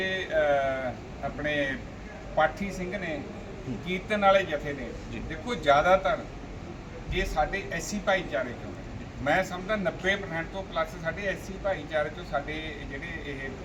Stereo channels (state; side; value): identical; both; correlation 1.00